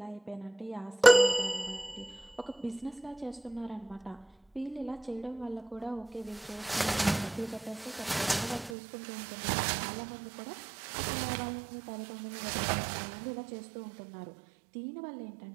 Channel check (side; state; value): left; drops out; at 8.8 s